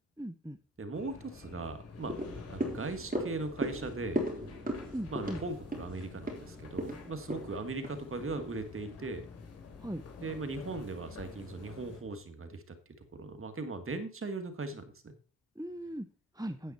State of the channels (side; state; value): both; normal; correlation 0.46